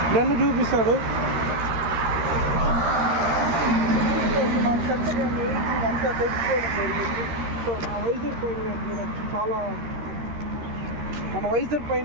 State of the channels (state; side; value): late; left; 13 ms